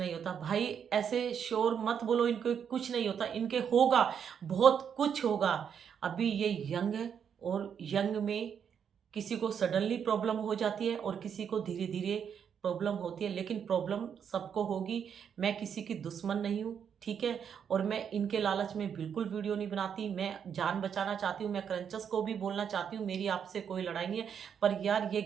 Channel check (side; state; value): left; quieter; 7.8 dB